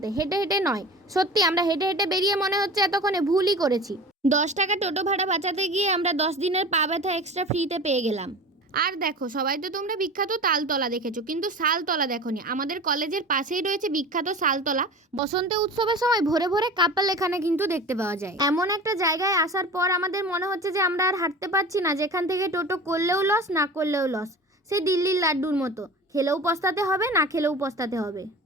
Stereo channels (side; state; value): both; normal; correlation 0.35